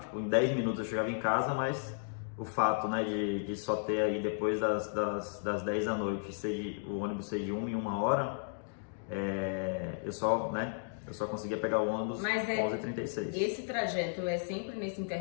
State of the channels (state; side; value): silent; right; digital silence